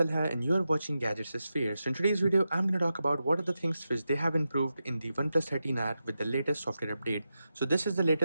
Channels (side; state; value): both; inverted; correlation -0.90